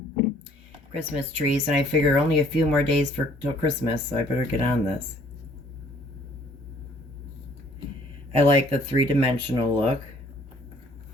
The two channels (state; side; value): normal; both; correlation 0.59